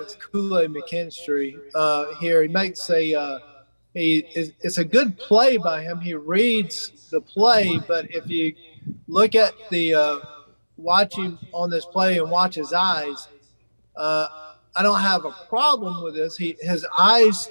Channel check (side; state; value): both; inverted; correlation -1.00